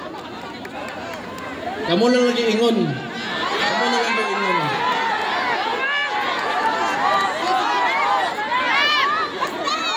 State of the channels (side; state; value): both; identical; correlation 1.00